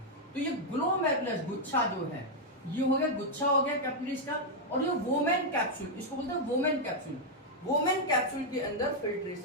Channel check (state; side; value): normal; both; correlation -0.02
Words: तो ये ग्लोमेरुलस गुच्छा जो है, ये हो गया गुच्छा हो गया कैपिलरीज का। और ये वोमेन कैप्सूल, इसको बोलते हैं वोमेन कैप्सूल। वोमेन कैप्सूल के अंदर